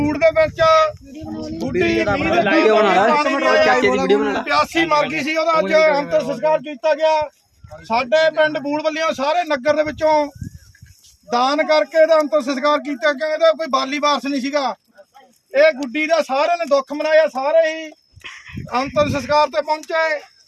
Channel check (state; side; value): identical; both; correlation 1.00